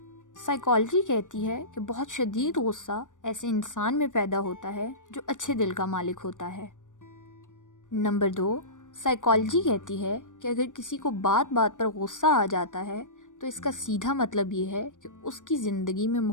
سائیکالوجی کہتی ہے کہ بہت شدید غصہ ایسے انسان میں پیدا ہوتا ہے جو اچھے دل کا مالک ہوتا ہے۔ نمبر 2، سائیکالوجی کہتی ہے کہ اگر کسی کو بات بات پر غصہ آ جاتا ہے تو اس کا سیدھا مطلب یہ ہے کہ اس کی زندگی میں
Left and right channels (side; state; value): right; late; 0.87 ms